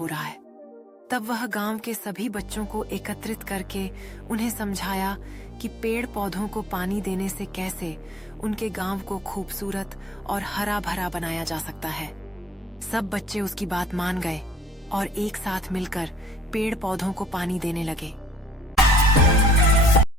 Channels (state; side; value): normal; both; correlation 0.59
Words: रहा है। तब वह गांव के सभी बच्चों को एकत्रित करके उन्हें समझाया कि पेड़ पौधों को पानी देने से कैसे उनके गांव को खूबसूरत और हरा भरा बनाया जा सकता है। सब बच्चे उसकी बात मान गए और एक साथ मिलकर पेड़ पौधों को पानी देने लगे।